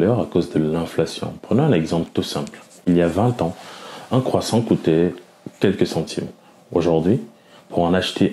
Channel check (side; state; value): both; identical; correlation 1.00